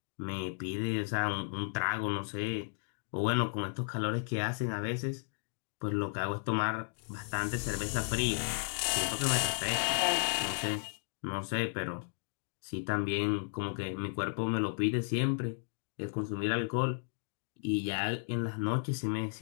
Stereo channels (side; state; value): right; silent; digital silence